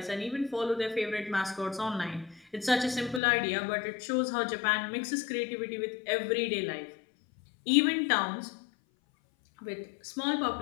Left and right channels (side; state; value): right; drops out; at 3.2 s